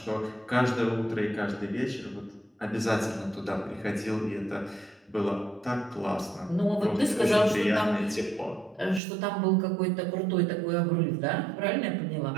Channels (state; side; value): drops out; left; at 9.0 s